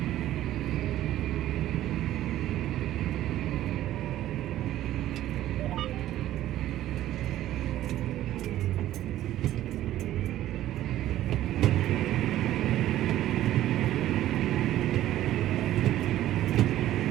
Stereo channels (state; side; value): quieter; left; 13.5 dB